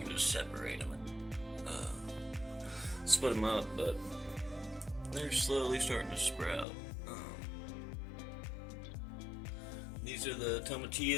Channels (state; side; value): drops out; right; at 6.7 s